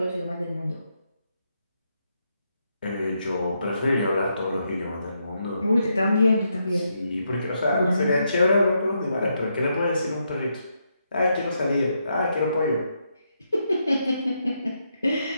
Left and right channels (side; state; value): both; inverted; correlation -0.80